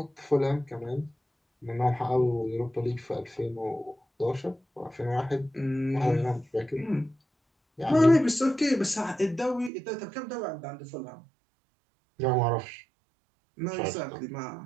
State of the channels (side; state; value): left; drops out; at 9.7 s